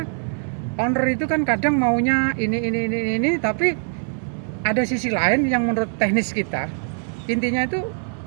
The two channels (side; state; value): left; silent; 60 dB below the other